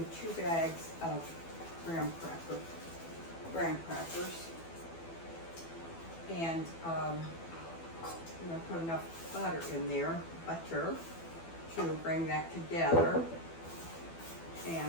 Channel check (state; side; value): late; right; 12 ms